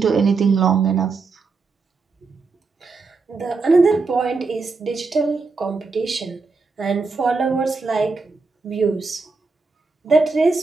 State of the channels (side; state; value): left; quieter; 4.2 dB